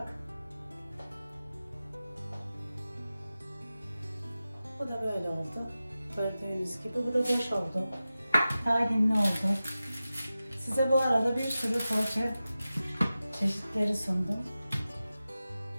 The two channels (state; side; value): inverted; both; correlation -0.95